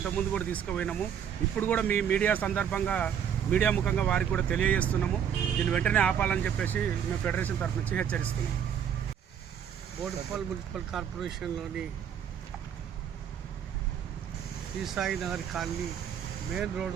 కూడా తీసుకుపోయినాము. ఇప్పుడు కూడా మీ మీడియా ముఖంగా వారికి కూడా తెలియజేస్తున్నాము. దీన్ని వెంటనే ఆపాలని చెప్పేసి మేము ఫెడరేషన్ తరఫు నుంచి హెచ్చరిస్తున్నాము. బోడుప్పల్ మున్సిపల్ కార్పొరేషన్లోని శ్రీసాయి నగర్ కాలనీ మెయిన్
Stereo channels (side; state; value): left; quieter; 8.6 dB